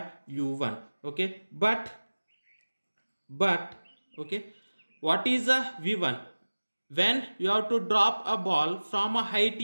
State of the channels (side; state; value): both; inverted; correlation -1.00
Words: u1. Okay, but okay, what is a v1? When you have to drop a ball from a height